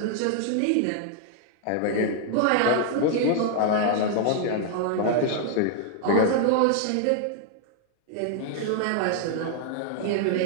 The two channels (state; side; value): different; both; correlation 0.00